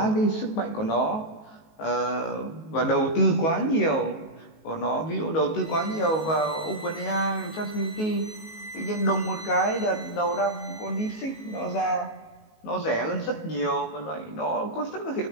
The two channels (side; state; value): right; late; 19 ms